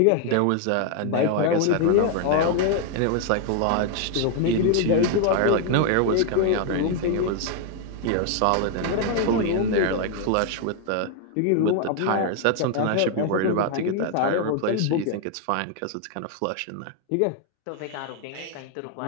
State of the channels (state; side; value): different; both; correlation 0.00